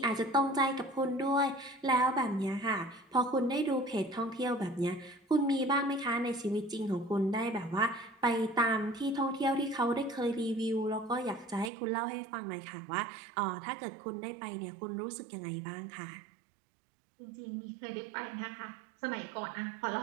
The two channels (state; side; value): drops out; left; at 11.7 s